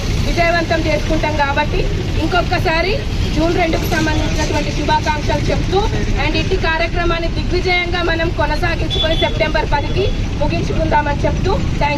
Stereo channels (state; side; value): identical; both; correlation 1.00